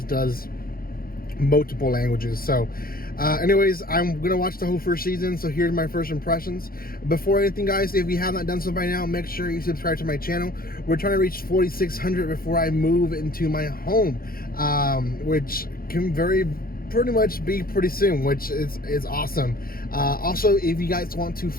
does multiple languages. So anyways, I'm gonna watch the whole first season, so here's my first impressions. Before anything, guys, if you have not done so by now, make sure you subscribe to my channel. We're trying to reach 4,600 before I move into my home, which can pretty much be pretty soon, which is awesome. Also, if you guys want to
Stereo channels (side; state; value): right; late; 0.43 ms